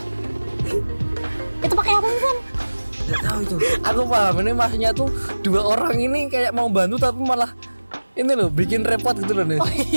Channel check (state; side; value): inverted; both; correlation -1.00